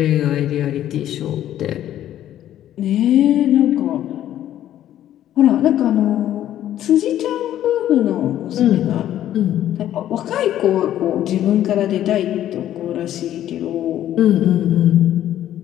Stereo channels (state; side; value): quieter; right; 12.0 dB